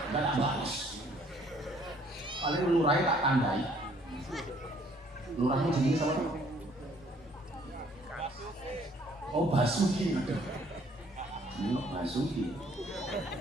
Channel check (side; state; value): both; normal; correlation 0.61